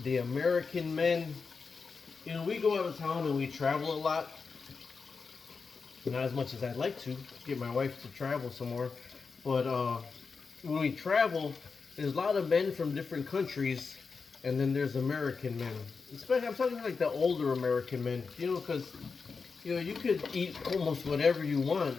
the American men. You know, we go out of town and we travel a lot. Not as much as I'd like to get my wife to travel some more, but when we travel, there's a lot of men from different countries, and then there's American men. Especially, I'm talking like the older American men, because you could eat almost whatever you want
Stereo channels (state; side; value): quieter; right; 4.9 dB